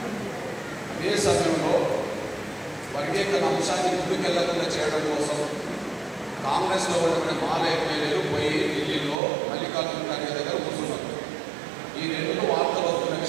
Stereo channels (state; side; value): drops out; left; at 9.2 s